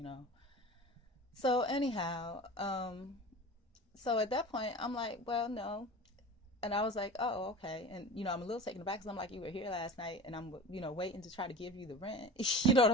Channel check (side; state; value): both; normal; correlation 0.36